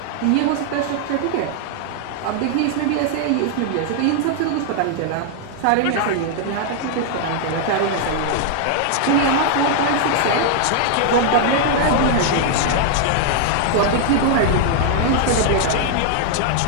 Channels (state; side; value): different; both; correlation 0.00